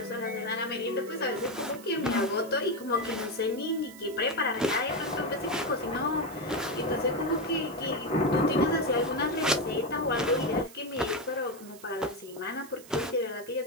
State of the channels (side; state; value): right; noise; hiss, 19 dB below the sound